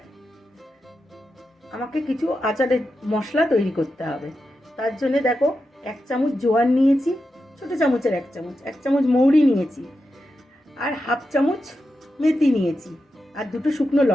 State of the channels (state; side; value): normal; both; correlation 0.89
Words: আমাকে কিছু আচারের মশলা তৈরি করতে হবে। তার জন্য দেখো 1 চামচ জোয়ান নিয়েছি, ছোটো চামচের 1 চামচ মৌরি নিয়েছি, আর 1/2 চামচ মেথি নিয়েছি, আর 2টো শুকনো